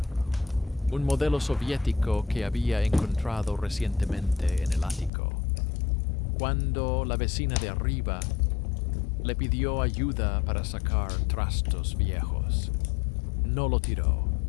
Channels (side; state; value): right; drops out; at 5.1 s